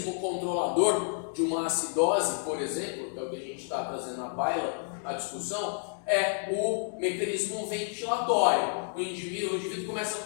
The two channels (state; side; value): silent; right; digital silence